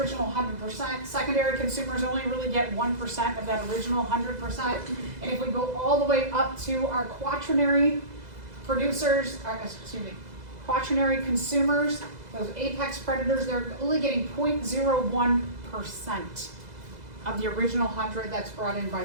100%, secondary consumers only really get 1% of that original 100%. And if we go all the way up to our quaternary producers, quaternary consumers, those apex predators, they're only getting 0.01% of the original 100 that's brought in by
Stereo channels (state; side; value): late; left; 2.0 ms